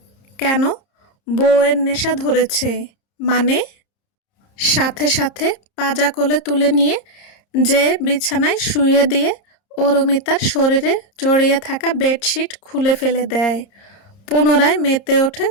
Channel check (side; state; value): right; late; 30 ms